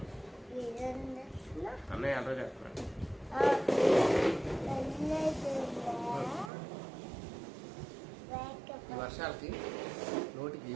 అన్నయ్య అర్థం చేస్తున్నా. ఈ వర్షాలకి నోటికి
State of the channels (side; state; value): left; drops out; at 6.5 s